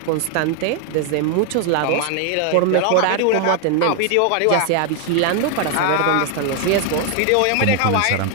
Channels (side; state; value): both; different; correlation 0.00